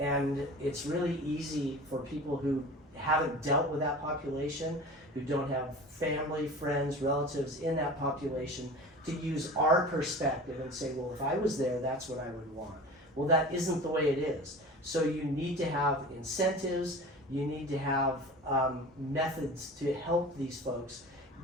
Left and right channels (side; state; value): both; normal; correlation 0.37